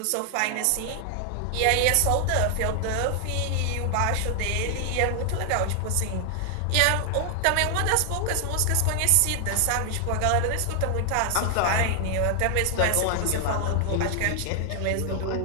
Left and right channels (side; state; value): both; different; correlation 0.00